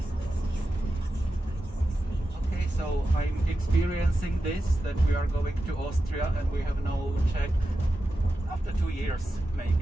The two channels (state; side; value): normal; both; correlation 0.92